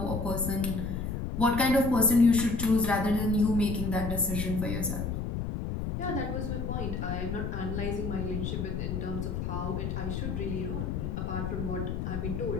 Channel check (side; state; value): left; noise; rumble, 3 dB below the sound